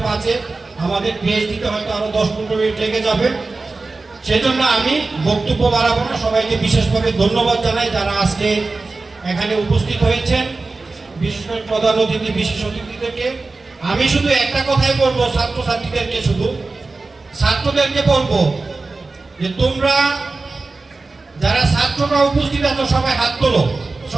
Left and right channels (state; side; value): quieter; left; 3.6 dB